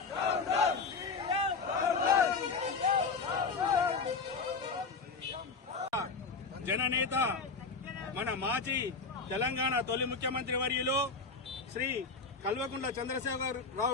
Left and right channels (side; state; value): right; quieter; 4.5 dB